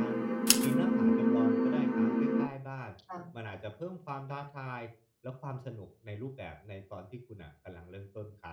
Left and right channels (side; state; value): both; identical; correlation 1.00